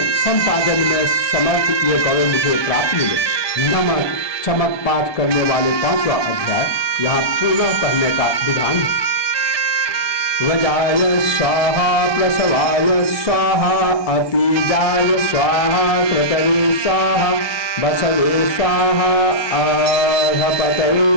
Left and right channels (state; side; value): late; right; 1.2 ms